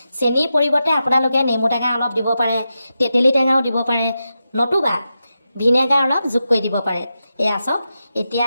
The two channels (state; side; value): inverted; both; correlation -0.89